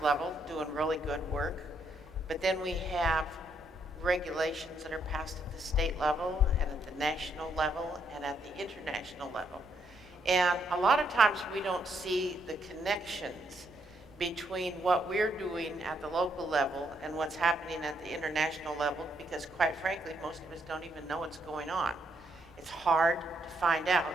level doing really good work. But then we have regulations that are passed at the state level and at the national level and at the international level. And a lot of times we don't see the connections between what we're doing at the local level and what's happening at the international level, because quite frankly, most of us don't even know what's going on. It's hard to find out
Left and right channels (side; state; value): both; normal; correlation 0.74